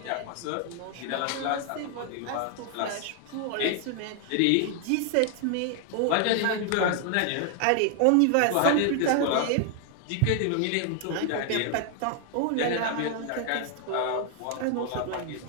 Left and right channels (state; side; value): different; both; correlation 0.00